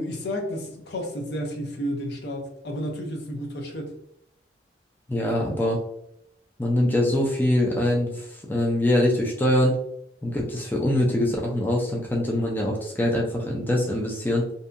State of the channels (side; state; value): both; normal; correlation 0.71